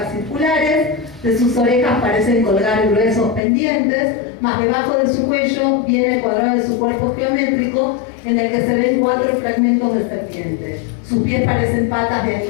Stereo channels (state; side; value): drops out; right; at 3.4 s